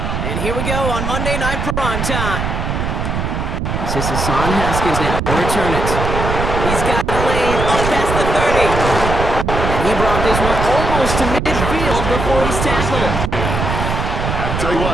here we go on Monday Night Prime Time. This is Hassan Haskins now. He'll return it. He's got a lane up past the 30. And he brought this one almost to midfield before he's tackled. I'll tell you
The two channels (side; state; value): right; noise; rumble, 2 dB below the sound